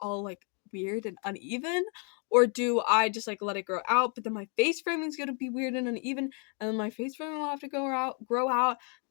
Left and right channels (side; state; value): right; quieter; 38.0 dB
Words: like weird and uneven, or do I just like let it grow out, but then my face framing is gonna be weird and uneven, and then my face framing will have to grow out,